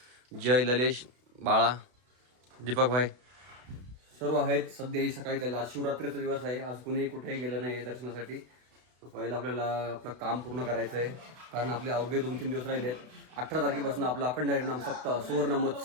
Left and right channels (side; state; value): left; late; 32 ms